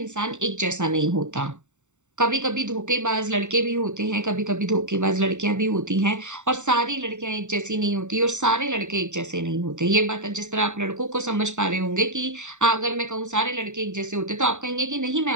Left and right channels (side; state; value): left; late; 0.84 ms